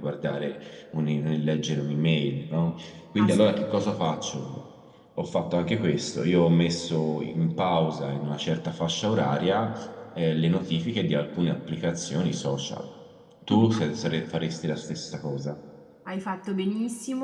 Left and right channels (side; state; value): both; identical; correlation 1.00